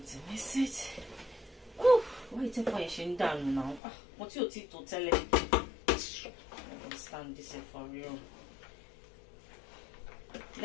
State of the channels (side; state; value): right; drops out; at 3.8 s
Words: to mix it. Oh, why is it pushing down now? What's your teeth to tell it? I don't stand this for real.